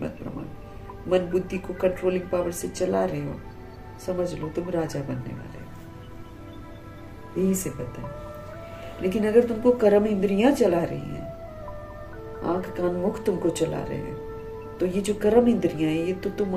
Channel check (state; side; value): identical; both; correlation 1.00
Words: प्रमाण, मन बुद्धि को कंट्रोलिंग पावर से चला रहे हो, समझ लो तुम राजा बनने वाले हो, यही से पता है। लेकिन अगर तुमको कर्म इंद्रियां चला रही हैं, आंख कान मुख तुमको चला रहे हैं, तो ये जो कर्म इंद्रियां हैं ये तो तुम